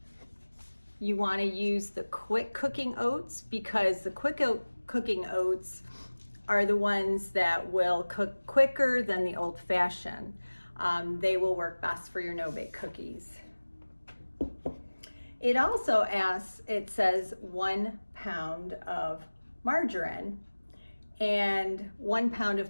You want to use the quick cooking oats, because the quick cooking oats are the ones that will cook quicker than the old-fashioned. They will work best for your no-bake cookies. It also it says 1 pound of margarine, and 1 pound of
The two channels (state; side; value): inverted; both; correlation -1.00